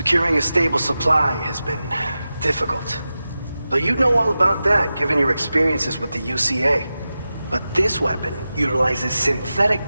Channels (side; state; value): both; inverted; correlation -0.93